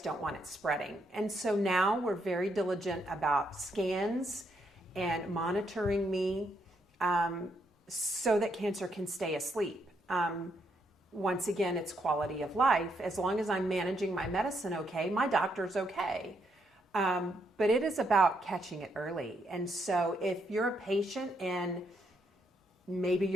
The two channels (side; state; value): both; normal; correlation 0.76